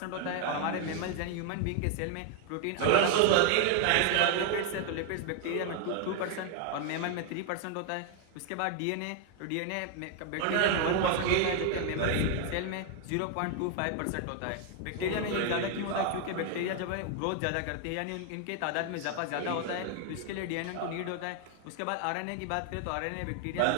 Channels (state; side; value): different; both; correlation 0.00